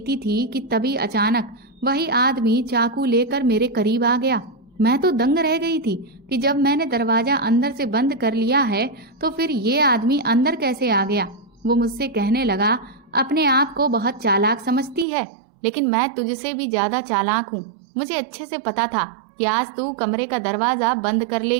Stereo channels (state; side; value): drops out; left; at 15.1 s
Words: थी कि तभी अचानक वही आदमी चाकू लेकर मेरे करीब आ गया। मैं तो दंग रह गई थी कि जब मैंने दरवाजा अंदर से बंद कर लिया है तो फिर ये आदमी अंदर कैसे आ गया। वो मुझसे कहने लगा, अपने आप को बहुत चालाक समझती है, लेकिन मैं तुझसे भी ज्यादा चालाक हूँ। मुझे अच्छे से पता था कि आज तू कमरे का दरवाजा बंद कर